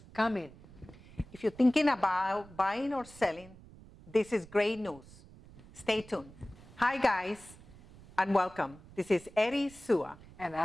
come in. If you're thinking about buying or selling, this is great news. Stay tuned. Hi guys, and welcome. This is Eddie Sua And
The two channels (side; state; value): right; noise; rumble, 21 dB below the sound